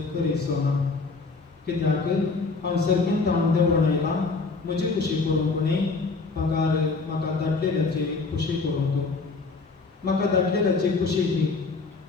करीसो ना कित्याक हांव सर्गीन ताण देंवून येयलां म्हजी खुशी करूंक न्ही म्हाका धाडलेल्याची खुशी करूंक म्हाका धाडलेल्याची खुशी ही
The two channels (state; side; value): quieter; right; 4.1 dB